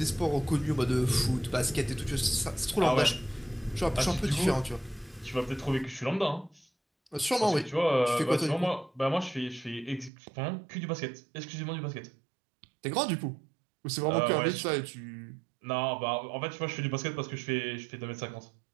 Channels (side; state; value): left; drops out; at 10.1 s